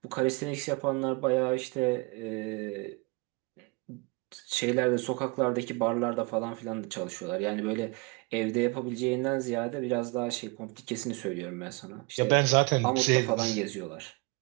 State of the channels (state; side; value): quieter; left; 28.2 dB